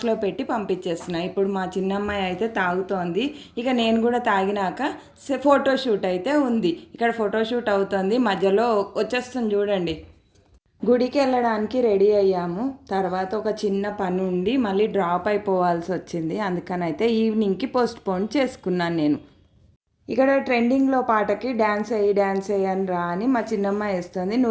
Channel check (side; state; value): both; identical; correlation 1.00